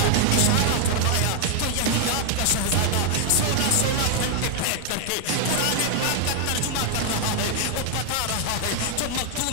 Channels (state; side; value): different; both; correlation 0.00